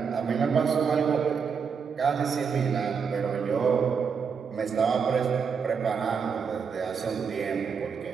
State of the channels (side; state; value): left; quieter; 6.2 dB